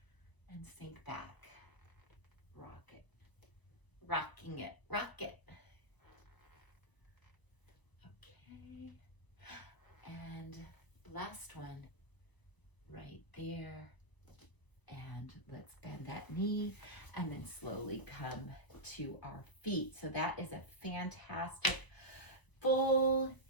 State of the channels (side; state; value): right; late; 1.0 ms